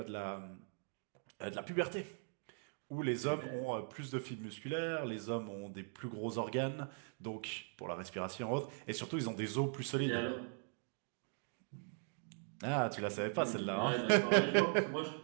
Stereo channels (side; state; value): left; silent; 51 dB below the other